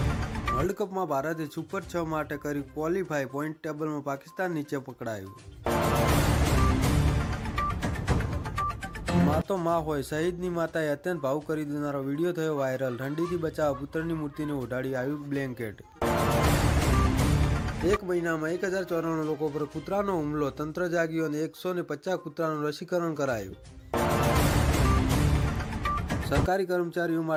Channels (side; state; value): both; identical; correlation 1.00